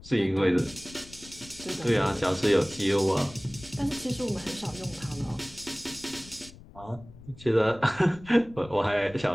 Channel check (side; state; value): left; noise; rumble, 20 dB below the sound